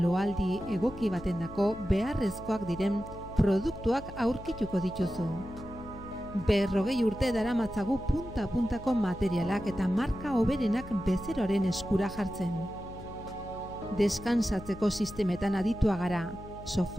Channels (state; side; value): noise; left; hum, 14 dB below the sound